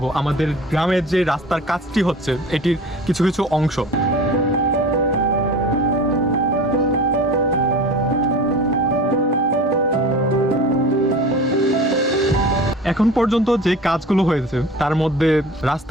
আমাদের গ্রামের যে রাস্তার কাজটি হচ্ছে এটির কিছু কিছু অংশ। এখন পর্যন্ত যে কাজগুলো হয়েছে তার মধ্যে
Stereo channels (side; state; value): both; normal; correlation 0.37